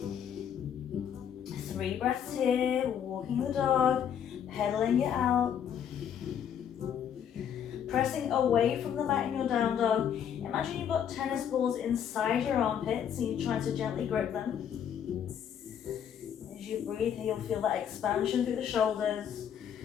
3 breaths here, walking the dog, pedaling it out. Pressing away from the mat in your down dog. Imagine you've got tennis balls inside your armpits and you're trying to gently grip them. As you breathe here, you'll feel that expansion through the shoulders.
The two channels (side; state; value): right; quieter; 8.8 dB